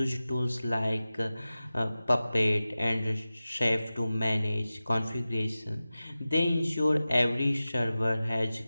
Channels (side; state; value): both; inverted; correlation -0.95